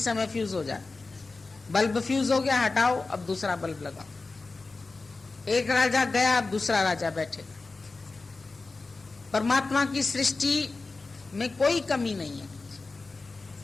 फ्यूज हो जाए। बल्ब फ्यूज हो गया, हटाओ, अब दूसरा बल्ब लगाओ। एक राजा गया, अब दूसरा राजा बैठेगा। परमात्मा की सृष्टि में कोई कमी नहीं है,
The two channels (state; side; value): quieter; right; 3.7 dB